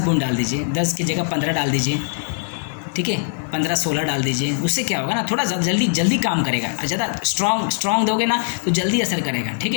डाल दीजिए, 10 की जगह 15 डाल दीजिए, ठीक है, 15-16 डाल दीजिए। उससे क्या होगा ना, थोड़ा जल्दी काम करेगा। ज़्यादा स्ट्रॉन्ग दोगे ना तो जल्दी असर करेगा, ठीक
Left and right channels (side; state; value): right; silent; digital silence